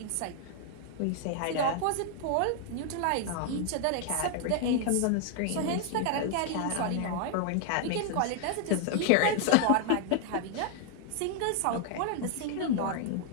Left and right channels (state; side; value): different; both; correlation 0.00